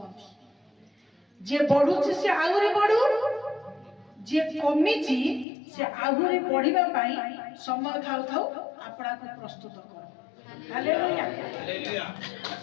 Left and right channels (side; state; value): right; drops out; at 5.5 s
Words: ଯିଏ ବଢୁଛି ସେ ଆହୁରି ବଢୁ ଯିଏ କମିଛି ସେ ଆହୁରି ବଢିବା ପାଇଁ ସମୟ ଥାଉ ଥାଉ ଆପଣାକୁ ପ୍ରସ୍ତୁତ କର। ହାଲେଲୁୟା।